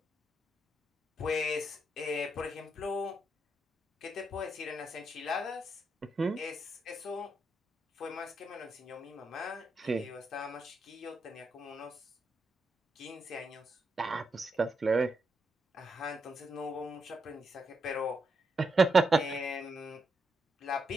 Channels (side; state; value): both; normal; correlation 0.82